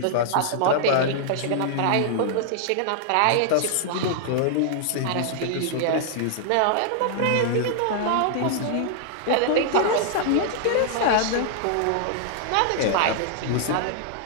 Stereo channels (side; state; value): both; different; correlation -0.01